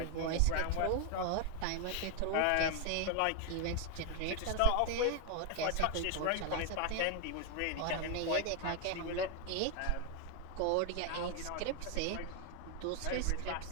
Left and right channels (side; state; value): both; different; correlation 0.00